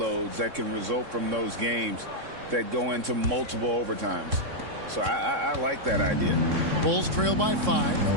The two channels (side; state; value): left; late; 3.6 ms